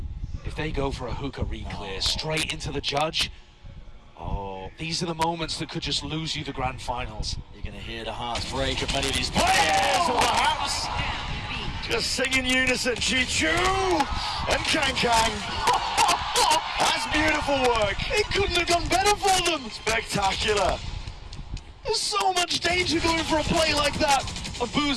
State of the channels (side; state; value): both; identical; correlation 1.00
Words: If they go for a hookah re-clear straight into the judge, these are the moments that could just lose you the grand finals. You're going to hear the hearts break of many of these players, or perhaps just sing in unison. Chichu and Kang. That's beautiful work. It couldn't have gone better for them. Spectacular. There's so much danger going for a play like that. And